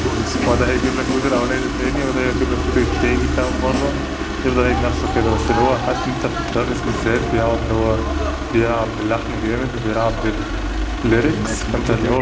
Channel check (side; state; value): both; identical; correlation 1.00